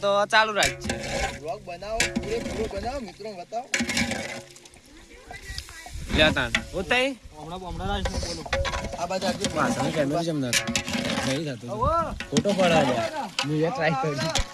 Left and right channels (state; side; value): identical; both; correlation 1.00